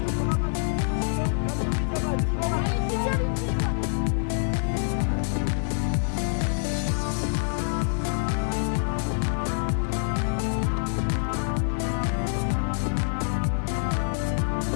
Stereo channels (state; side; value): silent; right; 61 dB below the other